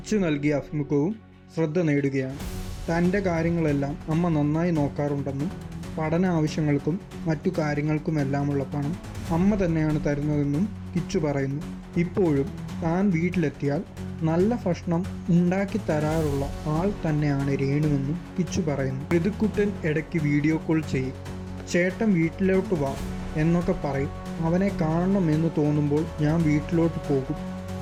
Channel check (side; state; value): both; identical; correlation 1.00